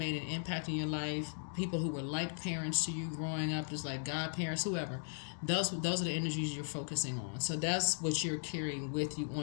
an impact in your life, people who were like parents to you growing up, just like godparents, whoever. Those are the energies you're focusing on. So that's what you're carrying with you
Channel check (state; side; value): silent; right; digital silence